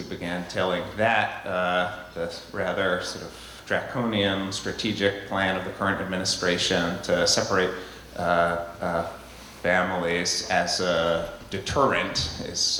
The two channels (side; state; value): both; identical; correlation 1.00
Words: began telling that, the rather sort of draconian strategic plan of the current administration to separate families as a deterrent